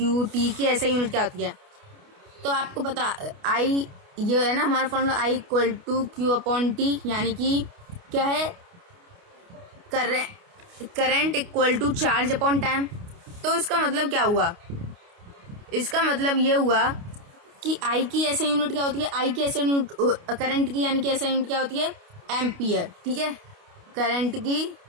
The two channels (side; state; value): left; late; 29 ms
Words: T की ऐसा यूनिट क्या होती है, तो आपको पता I ये है ना हमारा formula I equal to Q upon T, यानी कि क्या है? Current equal to charge upon time. तो इसका मतलब क्या हुआ? इसका मतलब ये हुआ कि I की ऐसा यूनिट क्या होती है? I की ऐसा यूनिट करंट की यानी कि ऐसा यूनिट क्या होती है? एम्पियर। ठीक है, करंट की